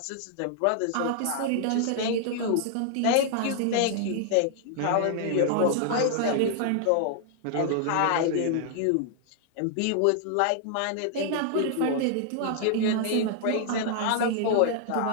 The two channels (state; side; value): different; both; correlation -0.01